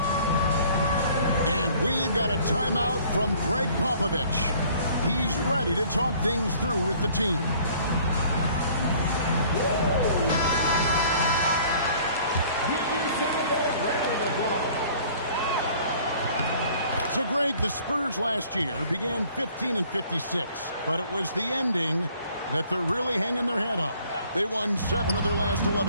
And we've got a timeout from Greg Popovich. He's ready to talk things through with the team. So, Greg, the Spurs last year began 15-56, but it was the ending that they're really hanging their head on. They won 7 of their last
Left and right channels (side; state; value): both; inverted; correlation -0.55